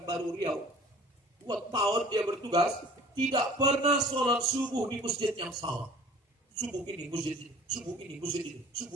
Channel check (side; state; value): both; normal; correlation 0.48